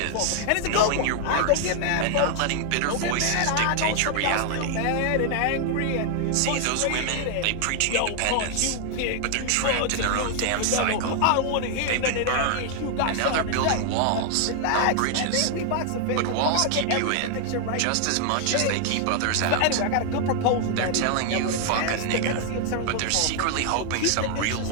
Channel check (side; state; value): both; different; correlation 0.00